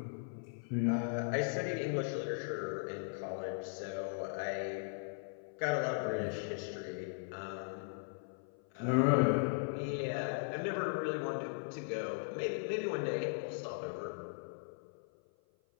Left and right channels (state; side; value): silent; right; 52 dB below the other